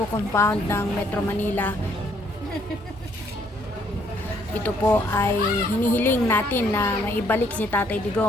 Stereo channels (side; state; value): both; normal; correlation 0.67